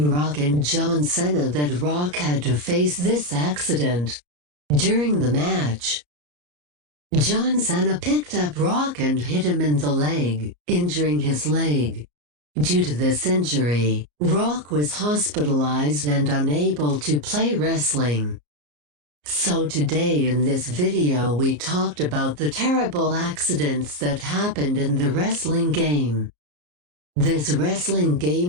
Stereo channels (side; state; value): left; late; 34 ms